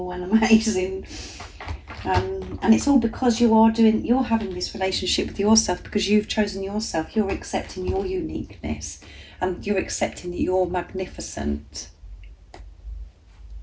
and amazing. And it's all because you're having this relationship with yourself, because you've chosen yourself. You're accepting your uniqueness, and you're accepting that you're magnificent.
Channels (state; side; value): identical; both; correlation 1.00